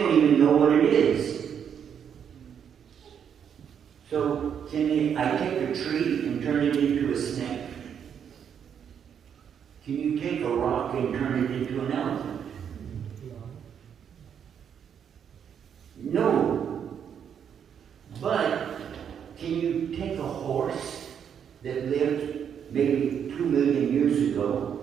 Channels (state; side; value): quieter; left; 8.1 dB